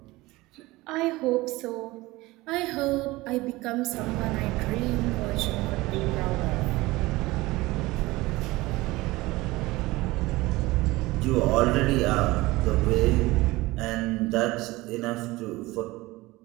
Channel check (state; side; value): quieter; left; 20.1 dB